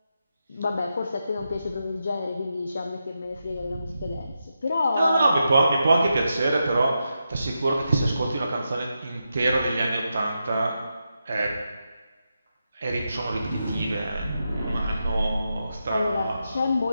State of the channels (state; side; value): inverted; both; correlation -0.87